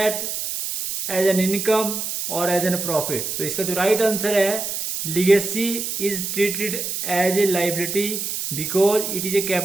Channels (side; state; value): right; noise; hiss, 4 dB below the sound